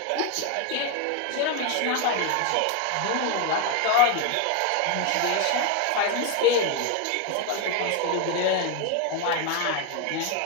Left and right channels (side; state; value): both; different; correlation 0.01